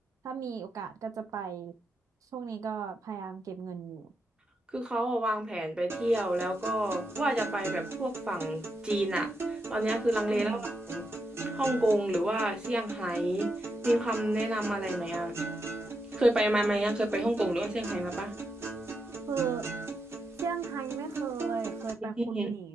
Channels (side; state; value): both; normal; correlation 0.83